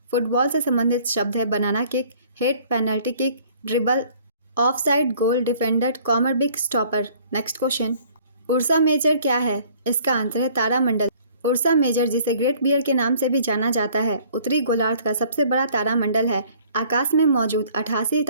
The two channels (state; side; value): inverted; both; correlation -0.56